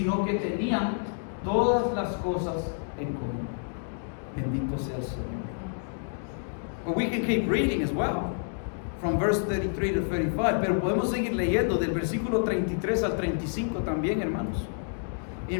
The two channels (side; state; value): right; silent; digital silence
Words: que tenían todas las cosas en común. Bendito sea el Señor. But we can keep reading as well, from verse 33 to 35, pero podemos seguir leyendo del versículo 33 al 35 también, hermanos.